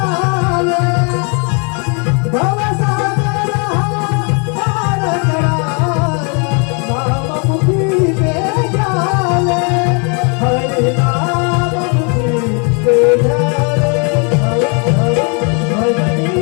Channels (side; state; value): right; quieter; 35.8 dB